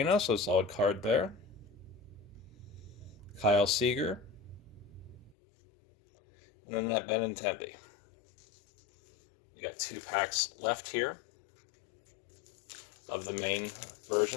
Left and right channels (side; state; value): right; drops out; at 5.4 s